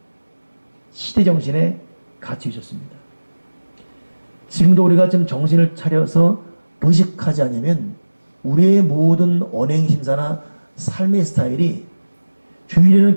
시대 정신에 갇혀 있었습니다. 지금도 우리가 좀 정신을 차려서 의식하지 않으면 우리의 모든 언행심사나 삶의 스타일이 주일에는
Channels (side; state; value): both; inverted; correlation -1.00